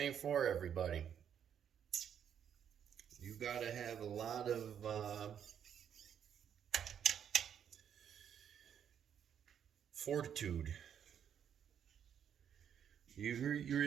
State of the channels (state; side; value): quieter; left; 8.7 dB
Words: for everybody. You gotta have a lot of fortitude. You